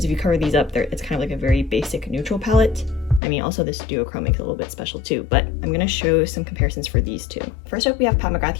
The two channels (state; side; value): drops out; right; at 3.2 s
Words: if you cover these up, it's kind of like a very basic neutral palette. I mean, also this duochrome makes it a little bit special too, but I'm gonna show some comparisons for these two. First up, we have Pat McGrath